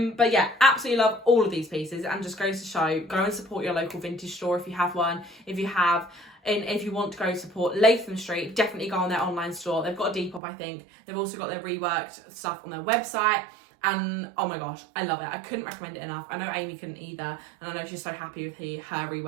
yeah, absolutely love all of these pieces, and just goes to show, go and support your local vintage store if you have one. If you have, and if you want to go support Latham Street, definitely go on their online store. They've got a Depop, I think. They've also got their reworked stuff on their website. And oh my gosh, I love it. I couldn't recommend it enough. I know Amy couldn't either, and I know she's so happy with her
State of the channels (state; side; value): drops out; left; at 10.4 s